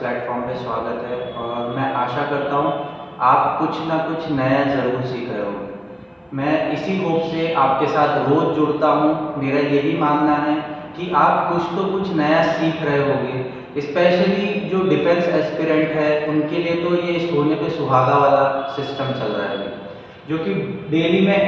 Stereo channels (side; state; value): both; identical; correlation 1.00